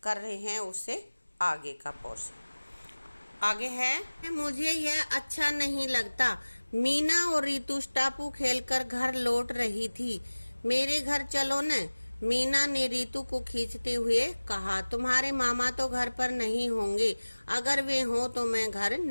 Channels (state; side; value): inverted; both; correlation -1.00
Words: कर रहे हैं उससे आगे का पोर्शन। आगे है, मुझे यह अच्छा नहीं लगता। मीना और रितु टापू खेलकर घर लौट रही थी। मेरे घर चलो न। मीना ने रितु को खींचते हुए कहा, तुम्हारे मामा तो घर पर नहीं होंगे। अगर वे हों तो मैं घर